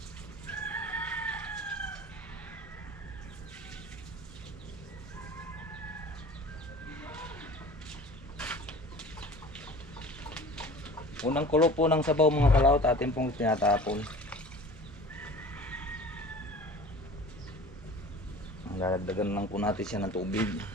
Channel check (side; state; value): both; normal; correlation 0.42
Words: Unang kulo po ng sabaw mga kalawot atin pong tinatapon. Lalagdagan lang po natin siya ng tubig.